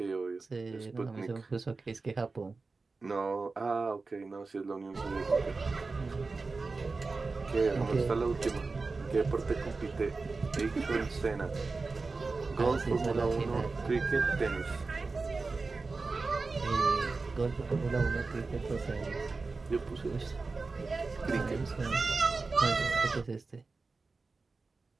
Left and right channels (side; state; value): left; quieter; 4.0 dB